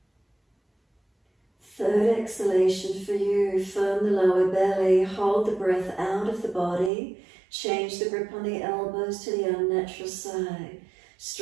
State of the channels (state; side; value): drops out; left; at 6.9 s